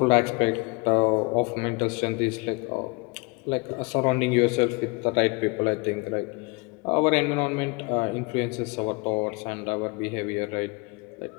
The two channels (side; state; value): right; quieter; 28.2 dB